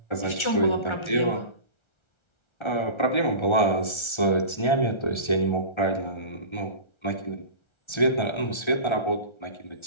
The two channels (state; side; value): late; right; 1.3 ms